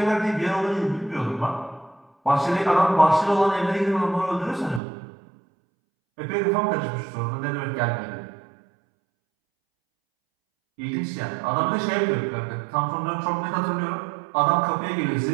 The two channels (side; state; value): left; drops out; at 4.8 s